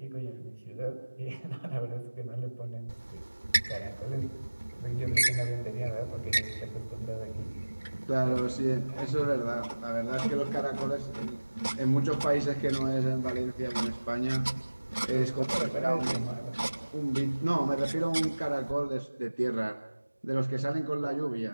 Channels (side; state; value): both; inverted; correlation -1.00